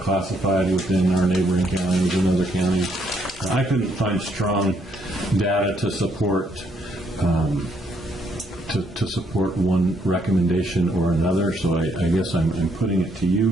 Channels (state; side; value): normal; both; correlation 0.72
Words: within our neighboring counties and other counties. I couldn't find strong data to support to support one recommendation or another, so I guess I'm putting it to